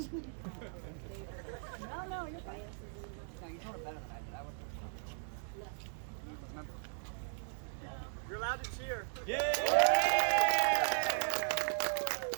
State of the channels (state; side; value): silent; left; digital silence